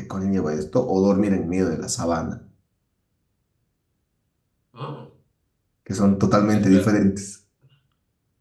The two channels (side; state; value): both; identical; correlation 1.00